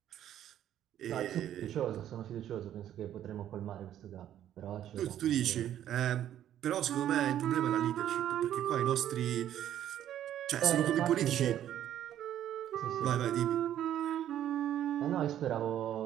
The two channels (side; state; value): left; quieter; 11.2 dB